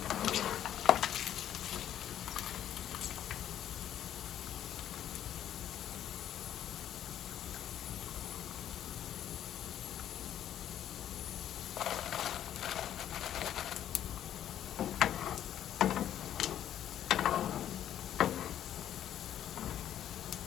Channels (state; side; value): quieter; right; 10.9 dB